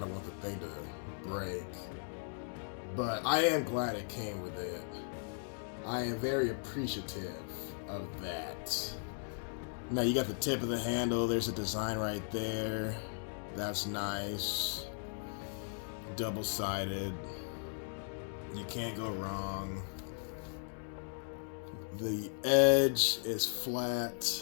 want the thing to break. But I am glad it came with it. I am very appreciative of that. Now you got the tip of the handle. There's a design right there. That's nice. Double-sided. You can't go wrong. The edge is flat.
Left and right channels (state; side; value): silent; right; digital silence